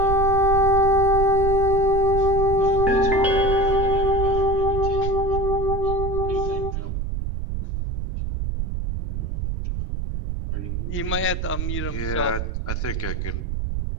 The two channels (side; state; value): right; noise; rumble, 3 dB below the sound